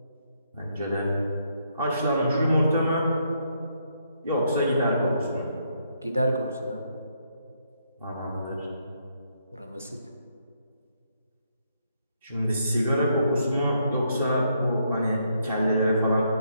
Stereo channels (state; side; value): inverted; both; correlation -0.75